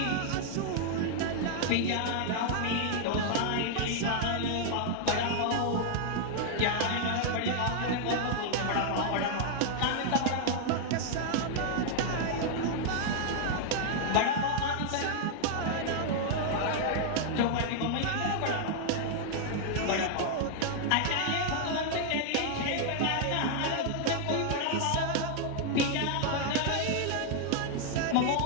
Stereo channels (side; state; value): both; different; correlation 0.00